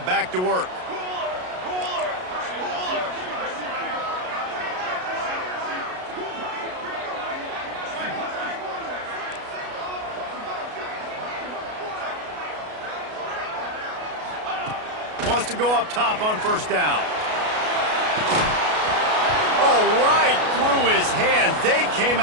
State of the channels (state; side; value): late; left; 33 ms